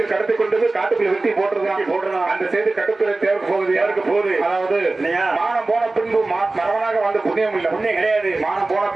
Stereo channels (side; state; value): left; quieter; 3.2 dB